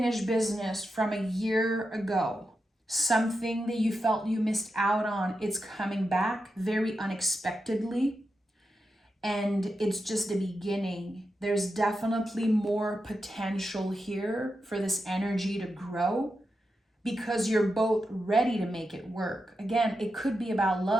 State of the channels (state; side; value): normal; both; correlation 0.88